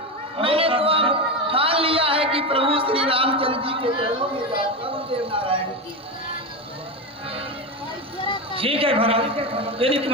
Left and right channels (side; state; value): both; normal; correlation 0.17